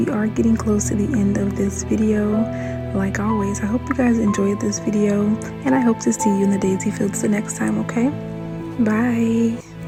are getting close to the end of this video. Like always, I hope you guys enjoyed this video, and I hope to see you in the daisy fields the next time, okay? Bye!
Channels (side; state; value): both; identical; correlation 1.00